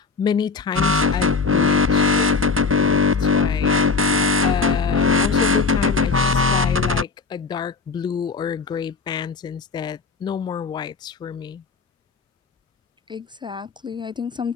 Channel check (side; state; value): right; quieter; 4.5 dB